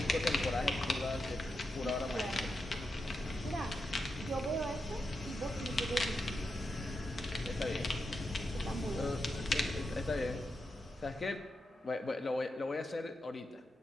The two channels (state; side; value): normal; both; correlation 0.87